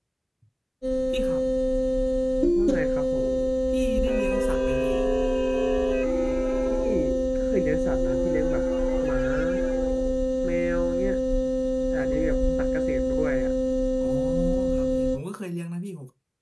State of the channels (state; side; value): identical; both; correlation 1.00